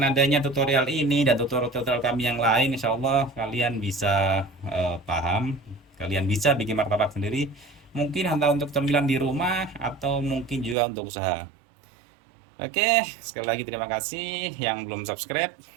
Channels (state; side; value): drops out; left; at 10.8 s